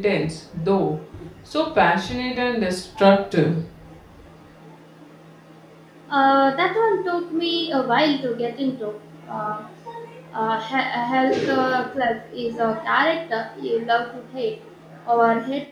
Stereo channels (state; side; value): identical; both; correlation 1.00